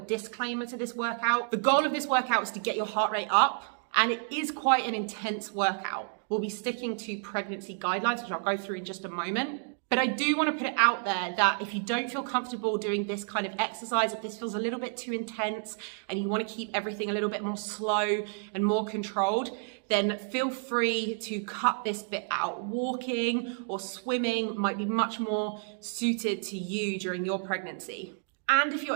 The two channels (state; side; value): silent; left; 57 dB below the other